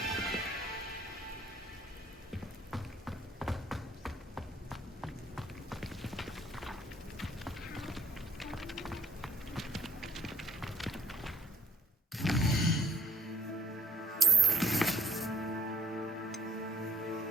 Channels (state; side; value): normal; both; correlation 0.59